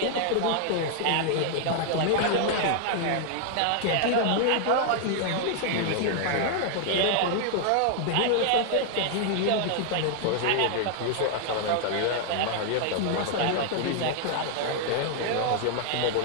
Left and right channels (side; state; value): both; different; correlation 0.00